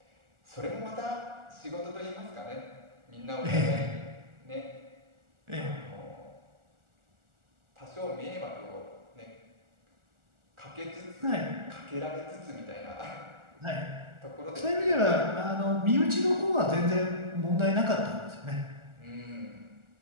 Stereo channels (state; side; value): late; left; 1.4 ms